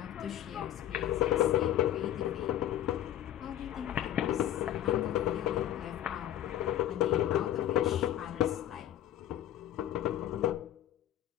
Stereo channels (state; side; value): quieter; right; 12.2 dB